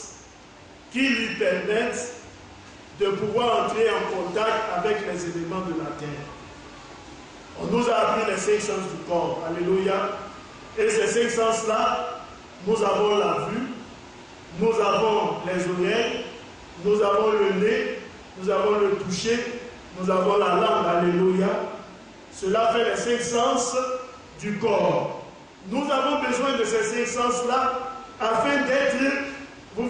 qui lui permettent de pouvoir entrer en contact avec les éléments de la terre. On nous a appris les 5 sens du corps. Alléluia. Et ces 5 sens-là, nous avons la vue, nous avons les oreilles, nous avons le nez, nous avons le toucher, nous avons la langue. Alléluia. Cela fait les 5 sens du corps. Nous avons besoin de ces 5 sens-là afin d'être, vous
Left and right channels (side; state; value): both; identical; correlation 1.00